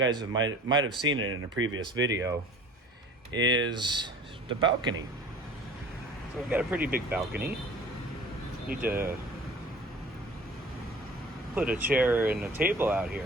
might have seen it in a previous video, is the balcony. So we've got a pretty big balcony. Need to put a chair and a table out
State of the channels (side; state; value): both; normal; correlation 0.44